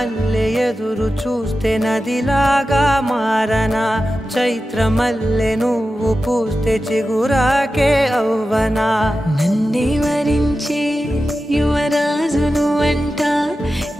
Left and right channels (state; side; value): normal; both; correlation 0.93